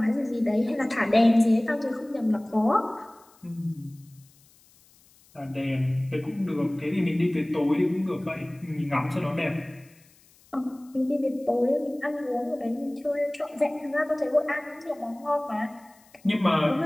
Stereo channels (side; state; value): left; noise; hiss, 29 dB below the sound